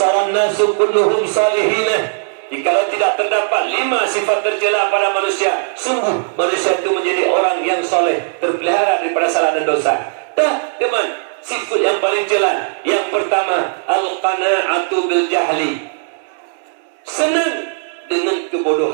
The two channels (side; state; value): left; silent; digital silence